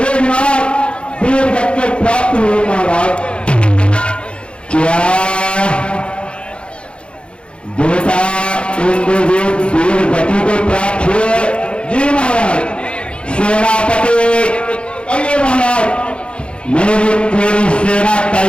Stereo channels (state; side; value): late; right; 0.058 ms